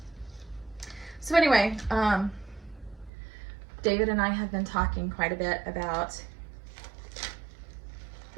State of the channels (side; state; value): left; drops out; at 3.1 s